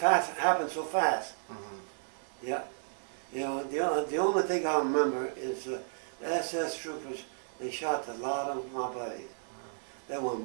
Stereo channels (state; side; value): silent; left; 56 dB below the other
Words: happened so fast. Mm-hmm. Yeah. You know, the only thing I remember is the SS troopers, they shot a lot of my buddies. They were